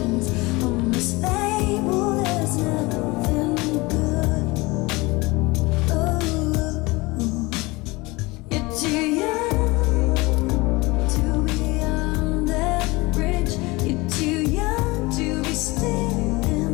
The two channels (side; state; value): right; quieter; 23.3 dB